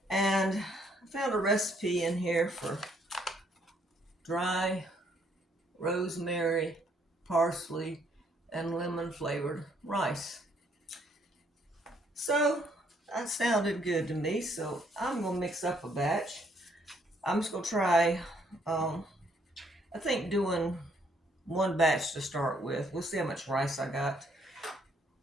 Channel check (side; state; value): both; normal; correlation 0.68